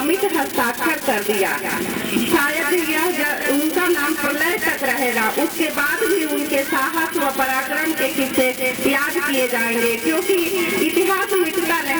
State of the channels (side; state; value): both; identical; correlation 1.00